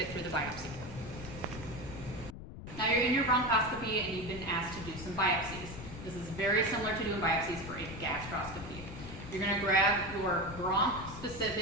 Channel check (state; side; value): noise; left; rumble, 12 dB below the sound